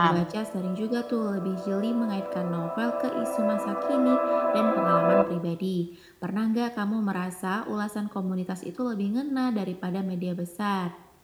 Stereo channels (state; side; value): identical; both; correlation 1.00